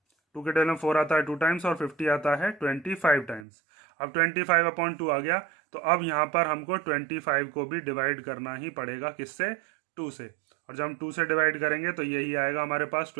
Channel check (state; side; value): drops out; left; at 3.5 s